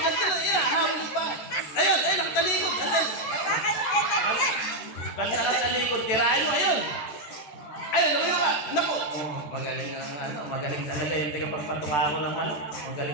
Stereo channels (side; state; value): right; late; 14 ms